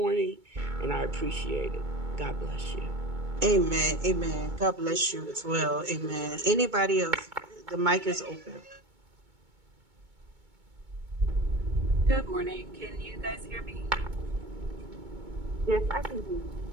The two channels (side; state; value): left; late; 2.2 ms